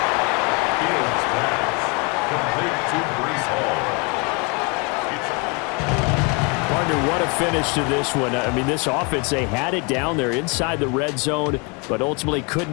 Fields pass complete to Breece Hall. Gardner, what a finish to this one. I mean, this offense, they had it down there inside the red zone, but ultimately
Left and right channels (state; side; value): quieter; right; 31.9 dB